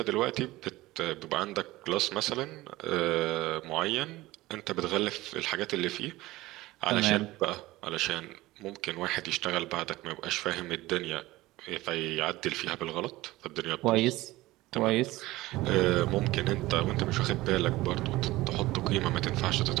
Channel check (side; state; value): left; quieter; 18.4 dB